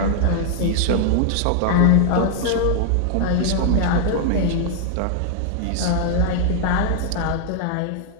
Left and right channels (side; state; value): both; different; correlation 0.00